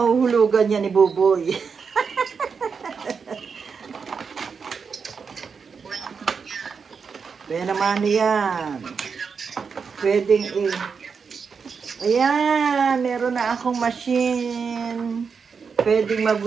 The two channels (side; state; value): left; quieter; 5.7 dB